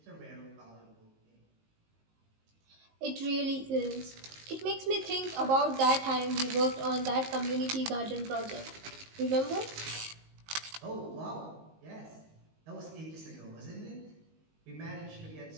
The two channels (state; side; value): late; left; 19 ms